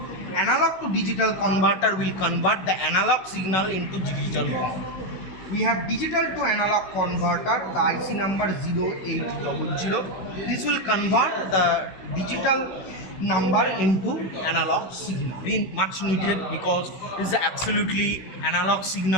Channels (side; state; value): right; late; 16 ms